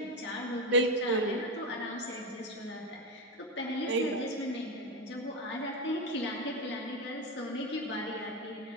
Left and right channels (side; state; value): both; normal; correlation 0.14